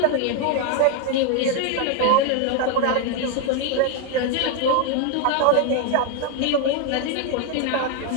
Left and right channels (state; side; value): different; both; correlation 0.01